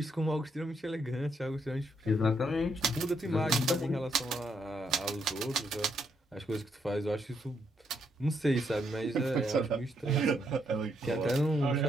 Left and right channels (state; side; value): normal; both; correlation 0.76